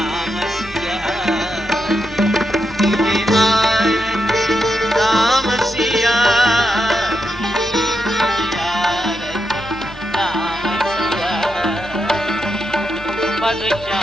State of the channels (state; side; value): normal; both; correlation 0.84